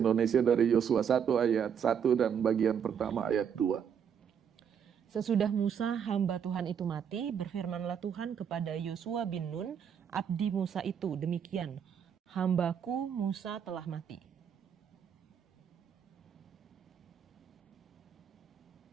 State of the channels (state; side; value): quieter; left; 7.8 dB